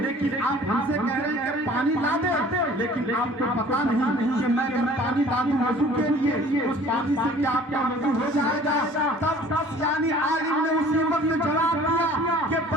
لیکن آپ ہم سے کہہ رہے ہیں کہ پانی لا دے، لیکن آپ کو پتا نہیں کہ میں اگر پانی لا دوں وضو کے لیے، اس پانی سے کیا آپ کا وضو ہو جائے گا۔ تب یعنی عالم نے اسی وقت جواب دیا کہ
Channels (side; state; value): both; normal; correlation 0.50